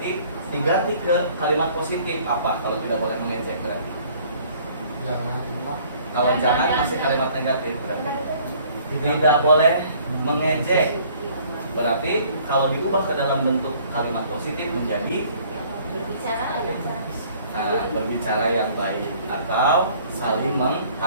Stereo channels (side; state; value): both; inverted; correlation -0.56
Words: diganti ke kalimat positif. Apa kalau tidak boleh mengejek berarti? Kalau jangan masih kalimat negatif berarti. Tidak boleh mengejek, berarti kalau diubah ke dalam bentuk kalimat positif menjadi berbicara yang baik atau saling